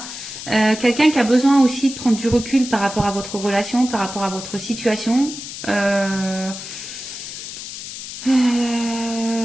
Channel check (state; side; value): noise; left; hiss, 10 dB below the sound